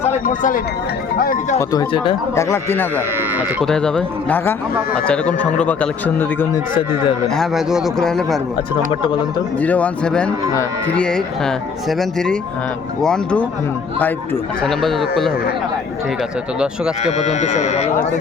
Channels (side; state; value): right; quieter; 5.4 dB